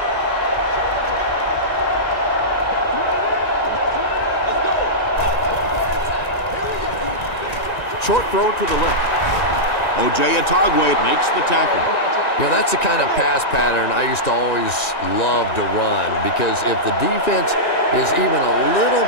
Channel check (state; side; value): late; right; 1.8 ms